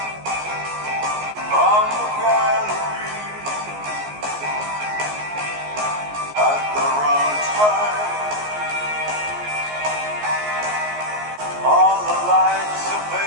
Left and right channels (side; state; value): left; late; 14 ms